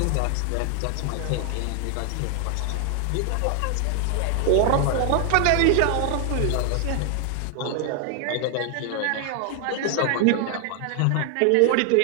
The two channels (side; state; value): both; different; correlation 0.00